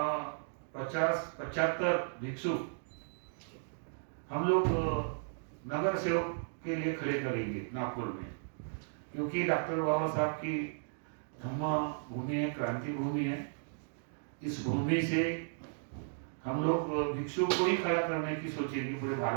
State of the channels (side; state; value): left; silent; digital silence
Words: 50-75 भिक्षुक हम लोग नगर सेवक के लिए खड़े करेंगे नागपुर में, क्योंकि डॉक्टर बाबा साहब की धम्म भूमि है, क्रांति भूमि है। इस भूमि से हम लोग भिक्षु को ही खड़ा करने की सोचेंगे पूरे